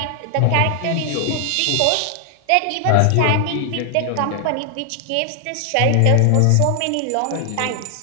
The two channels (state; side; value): different; both; correlation 0.00